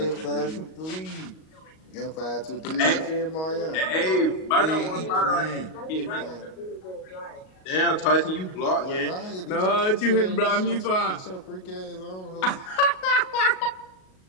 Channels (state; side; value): late; right; 38 ms